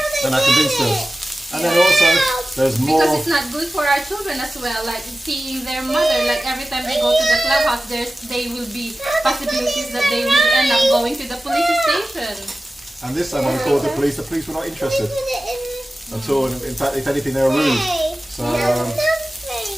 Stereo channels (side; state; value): both; normal; correlation 0.95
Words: And I convinced them. And then also, there's more... Because it's not good for our children as well. Like seeing their mother, like every time they go to the clubhouse, they will be possibilities that they will end up going to the police station. And this time when we called the police were not interested at all. In fact, if anything, they were rude. So,